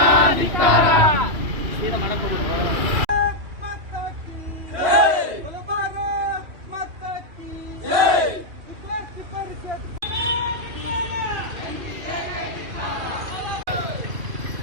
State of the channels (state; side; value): late; left; 3.0 ms